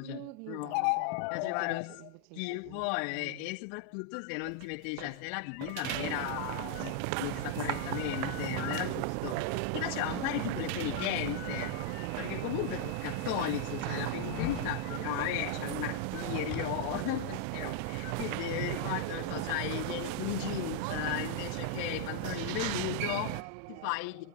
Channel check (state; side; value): different; both; correlation 0.00